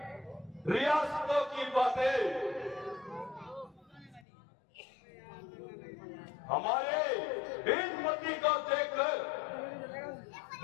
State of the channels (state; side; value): drops out; right; at 4.2 s